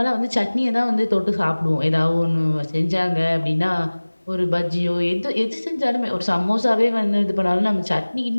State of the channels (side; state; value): both; inverted; correlation -1.00